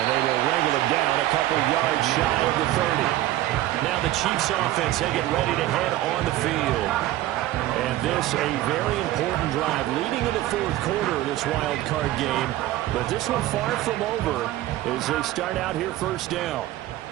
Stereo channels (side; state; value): left; quieter; 15.1 dB